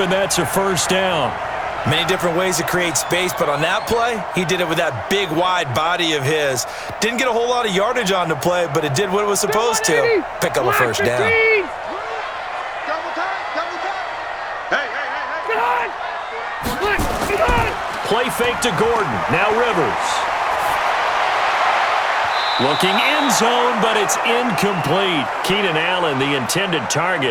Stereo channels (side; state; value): both; identical; correlation 1.00